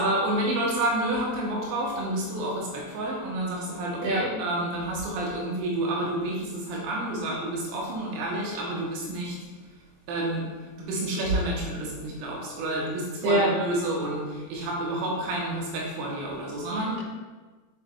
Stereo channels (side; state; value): left; late; 23 ms